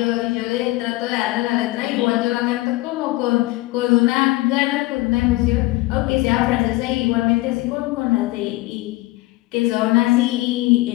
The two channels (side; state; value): right; quieter; 19.9 dB